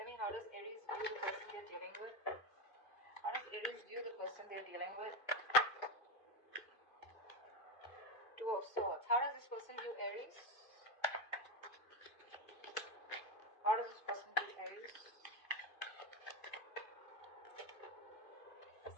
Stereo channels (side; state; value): right; late; 2.5 ms